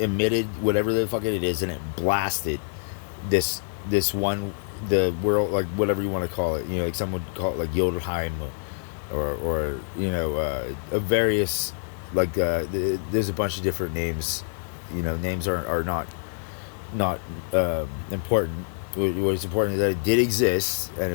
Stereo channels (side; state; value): right; silent; digital silence